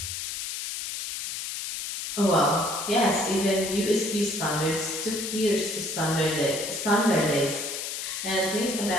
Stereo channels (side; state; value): left; noise; hiss, 5 dB below the sound